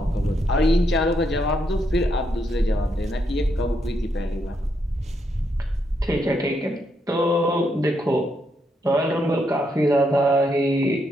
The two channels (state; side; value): normal; both; correlation 0.78